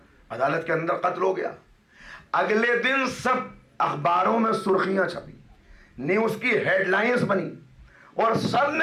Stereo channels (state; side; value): identical; both; correlation 1.00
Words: عدالت کے اندر قتل ہو گیا. اگلے دن سب اخباروں میں سرخیاں چھپی, نیوز کی ہیڈ لائنز بنی اور سب